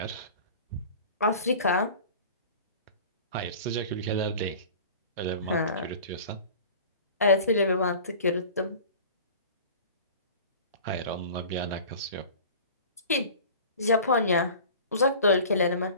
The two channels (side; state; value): both; inverted; correlation -0.41